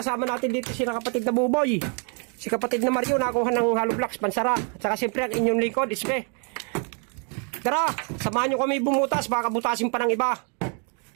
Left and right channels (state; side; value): quieter; left; 39.0 dB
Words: natin dito sila kapatid na Buboy. Si kapatid na Mario nakuha ng hollow blocks, pansara. At saka siyempre ang inyong lingkod, Ispe. Tara, samahan nyo kami bumutas, baka butasin pa ng iba.